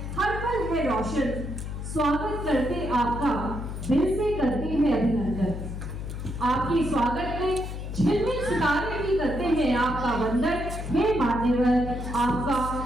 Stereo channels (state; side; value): noise; left; hum, 6 dB below the sound